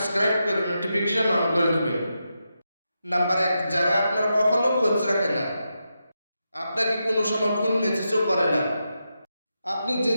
করে নোটিফিকেশন অন করে দেবেন। নাম্বার 1, যারা আপনার কখনো খোঁজ রাখে না, আপনাকে কোনো সময় ফোন মেসেজও করে না। আপনি যে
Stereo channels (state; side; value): inverted; both; correlation -0.87